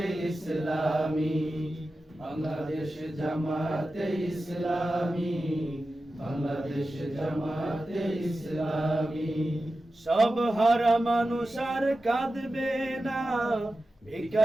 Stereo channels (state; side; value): normal; both; correlation 0.93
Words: ইসলামী, বাংলাদেশ জামাতে ইসলামী, বাংলাদেশ জামাতে ইসলামী। সব হারা মানুষ আর কাঁদবে না,